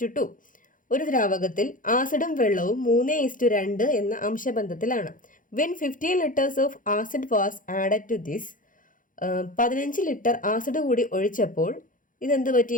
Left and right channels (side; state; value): right; late; 0.39 ms